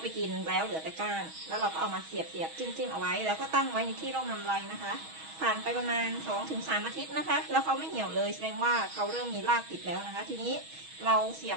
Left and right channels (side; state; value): left; late; 6.3 ms